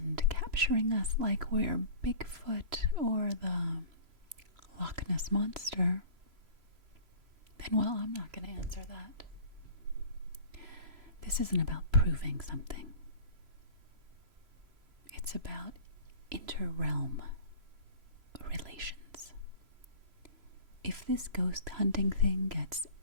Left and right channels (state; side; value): late; left; 3.0 ms